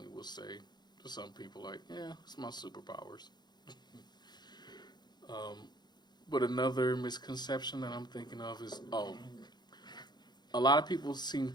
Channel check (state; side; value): late; right; 0.21 ms